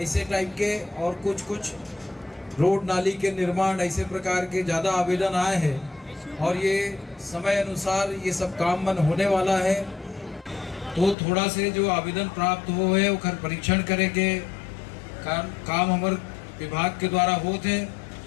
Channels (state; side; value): drops out; right; at 11.2 s